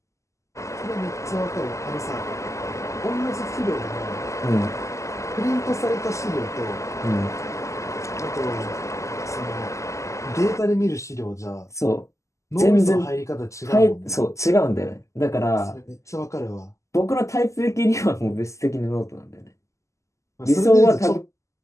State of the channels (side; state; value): right; late; 0.15 ms